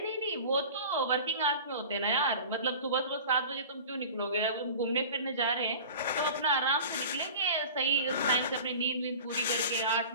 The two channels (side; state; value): both; inverted; correlation -0.38